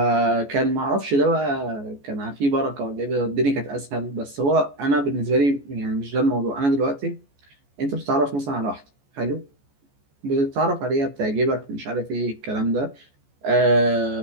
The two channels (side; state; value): left; late; 14 ms